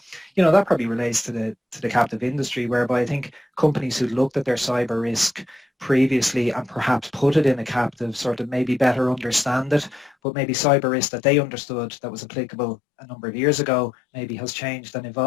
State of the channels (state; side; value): drops out; right; at 10.2 s